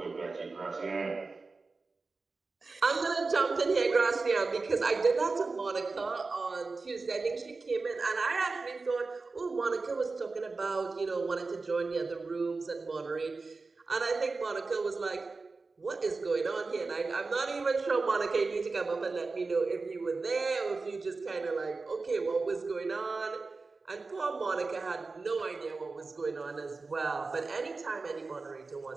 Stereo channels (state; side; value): quieter; left; 3.9 dB